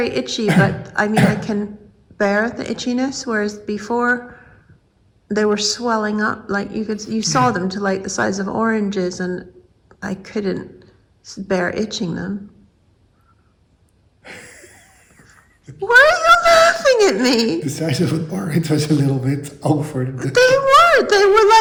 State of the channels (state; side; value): identical; both; correlation 1.00